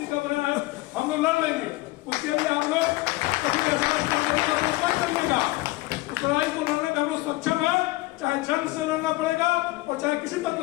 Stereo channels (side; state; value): right; quieter; 20.2 dB